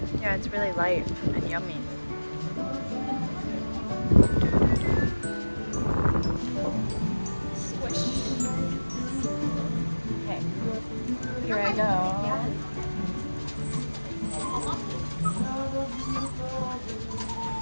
Yeah, it's really light and yummy. Okay, here I go.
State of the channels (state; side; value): inverted; both; correlation -1.00